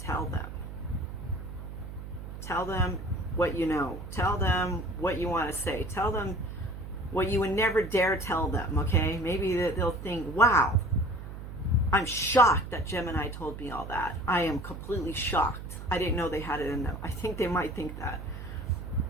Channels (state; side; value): noise; right; hum, 10 dB below the sound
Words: tell them. Tell them what you know. Tell them what you want to say. Tell them what you would never dare tell them, okay? Maybe they'll think, wow, I'm shocked that Gemini told me all that. I am completely shocked. I didn't know they had it in them. I think they might think that.